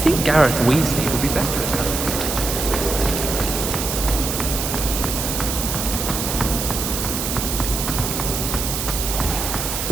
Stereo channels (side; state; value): right; noise; hiss, 3 dB below the sound